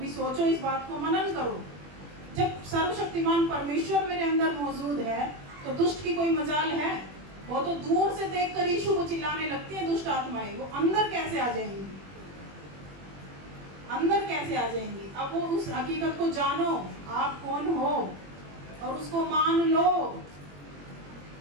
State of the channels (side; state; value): left; late; 21 ms